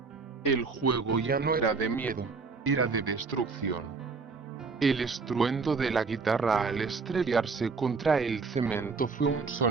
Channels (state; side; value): quieter; left; 4.6 dB